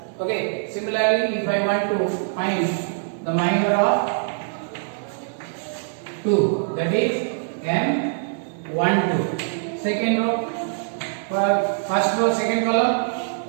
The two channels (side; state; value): left; silent; digital silence